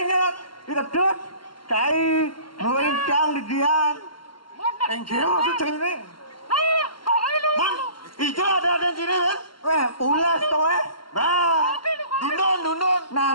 kedut, cai, melincang di dian. Enggak maksud ini. Hijau ada di sini kan? Ulas tuh Dundun.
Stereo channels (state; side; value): late; right; 0.72 ms